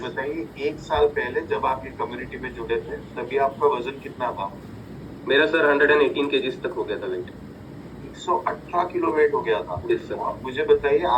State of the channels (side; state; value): both; identical; correlation 1.00